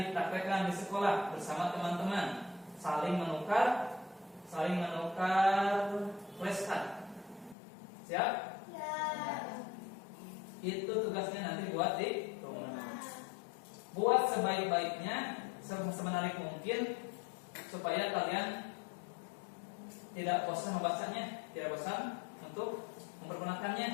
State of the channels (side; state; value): right; drops out; at 7.6 s